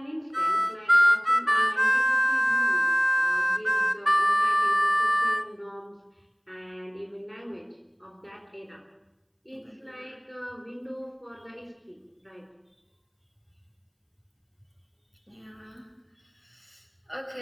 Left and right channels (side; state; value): both; identical; correlation 1.00